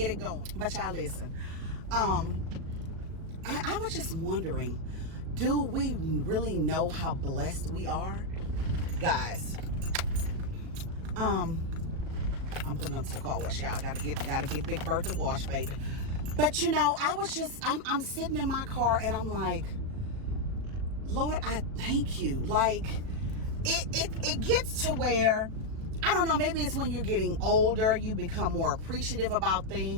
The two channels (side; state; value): left; late; 37 ms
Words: it going. But y'all listen, I was just wondering, do we really know how blessed we are? Guys, I'm putting up to the car wash, y'all. Gotta get Big Bertha wash, baby. But you know, I'm sitting in my car and I'm like, Lord, I thank you. Like, it gets to where, I don't know, maybe it's when you're getting older, you become more appreciative about